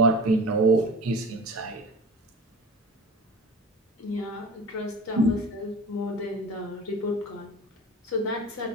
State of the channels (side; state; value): both; normal; correlation 0.36